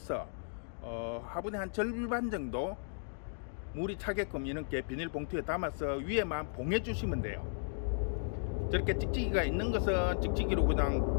화분의 한 절반 정도 물이 차게끔 이렇게 비닐봉투에 담아서 위에만 봉해 주시면 돼요. 저렇게 찍찍이가 있는 것은 찍찍이로 그냥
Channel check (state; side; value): silent; right; digital silence